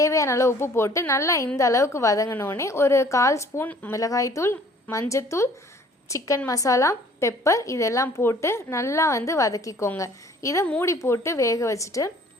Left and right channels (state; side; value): normal; both; correlation 0.54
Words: அளவு உப்பு போட்டு நல்லா இந்த அளவுக்கு வதங்கினோடனே ஒரு 1/4 ஸ்பூன் மிளகாய்த்தூள், மஞ்சத்தூள், சிக்கன் மசாலா, பெப்பர் இதெல்லாம் போட்டு நல்லா வதக்கிக்கோங்க. இதை மூடி போட்டு வேக வச்சுட்டு